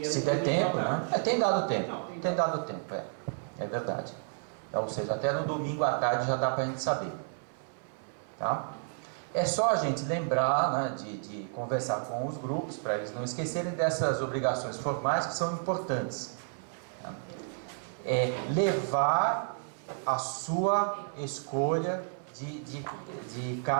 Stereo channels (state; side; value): silent; left; 57 dB below the other